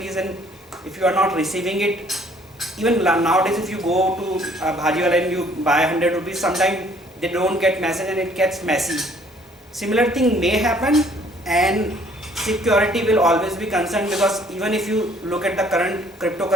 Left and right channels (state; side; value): normal; both; correlation 0.60